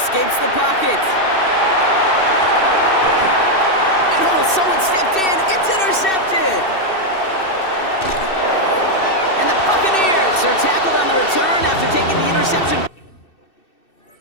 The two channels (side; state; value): right; late; 2.6 ms